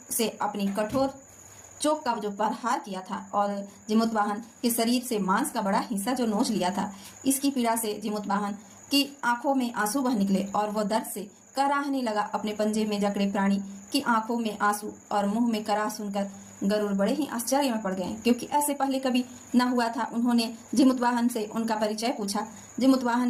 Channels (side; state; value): both; identical; correlation 1.00